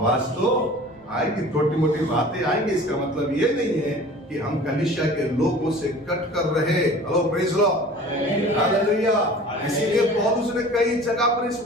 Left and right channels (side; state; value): both; normal; correlation 0.43